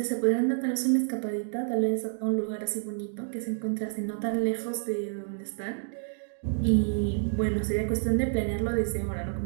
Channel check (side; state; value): left; silent; digital silence